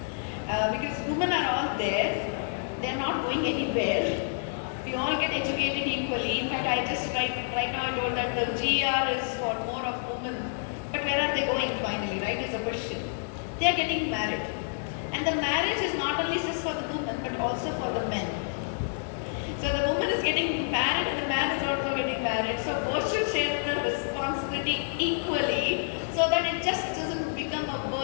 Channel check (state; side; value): silent; right; digital silence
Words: Because women are all there, they're not going anywhere. We all get educated equally. In fact, right now I told that the GR is for more of women. But where are they going finally, right, is a question. They are getting married. And the marriage is not only just for the woman, but also for the men. So the woman is getting married and the man is also getting married. So both should share the responsibility equally so that it just doesn't become a